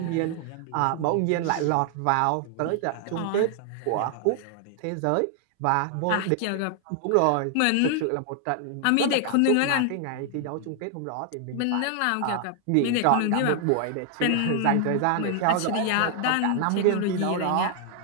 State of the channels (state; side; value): different; both; correlation 0.00